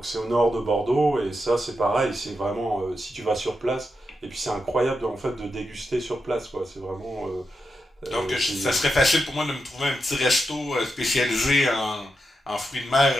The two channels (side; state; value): both; normal; correlation 0.87